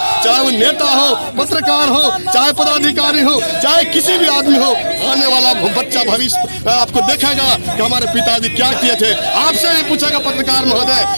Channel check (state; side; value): inverted; both; correlation -1.00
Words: चाहे वो नेता हो, पत्रकार हो, चाहे पदाधिकारी हो, चाहे किसी भी आदमी हो। आने वाला बच्चा भविष्य आपको देखेगा कि हमारे पिताजी क्या किए थे। आपसे भी पूछेगा पत्रकार महोदय